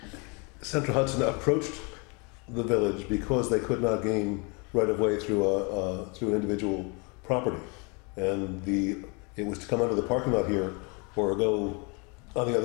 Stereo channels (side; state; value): right; quieter; 31.8 dB